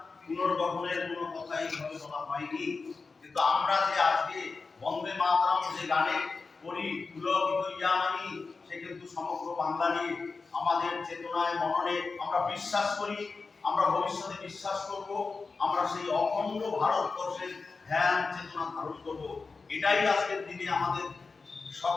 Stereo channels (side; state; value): right; quieter; 4.3 dB